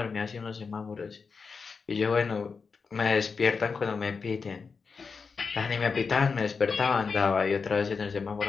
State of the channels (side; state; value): right; quieter; 5.1 dB